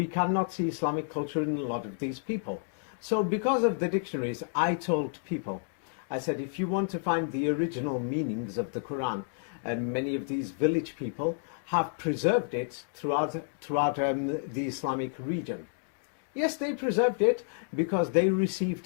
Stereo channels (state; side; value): silent; right; digital silence